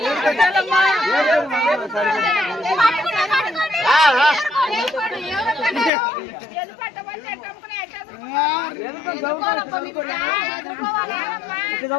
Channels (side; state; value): right; drops out; at 5.9 s